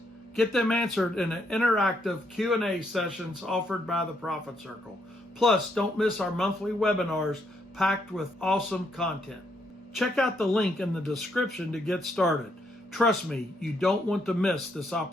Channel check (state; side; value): normal; both; correlation 0.74